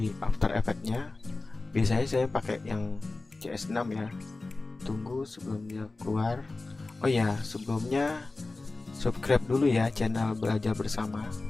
After Effects-nya. Biasanya saya pakai yang CS6 ya. Tunggu sebelum dia keluar. Oh ya, sebelumnya subscribe dulu ya channel Belajar Bersama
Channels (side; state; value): right; quieter; 3.3 dB